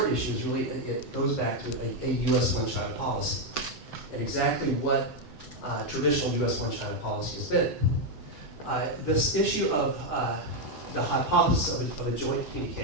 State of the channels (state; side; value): late; right; 7.9 ms